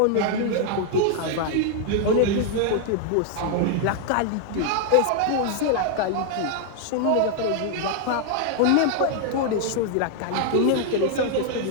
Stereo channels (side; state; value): both; different; correlation 0.00